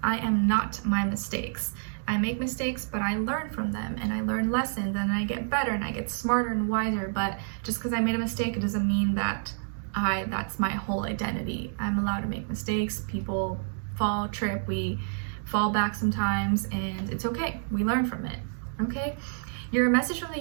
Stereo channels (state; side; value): silent; left; digital silence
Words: I am not my mistakes. I make mistakes, but I learn from them, and I learn lessons, and I get better, and I get smarter and wiser. But just because I made a mistake, it doesn't mean that that's my whole identity. I'm allowed to make mistakes. People fall, trip, we fall back sometimes, and it's okay. We learn from it, okay? Your message from the